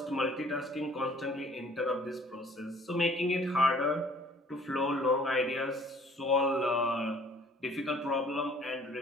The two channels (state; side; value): normal; both; correlation 0.56